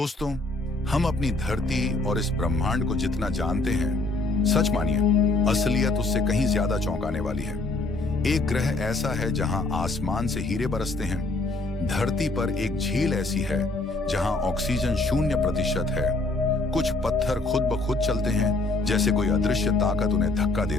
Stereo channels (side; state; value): right; quieter; 3.0 dB